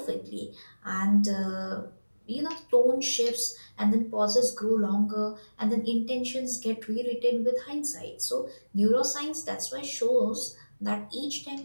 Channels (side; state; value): both; inverted; correlation -1.00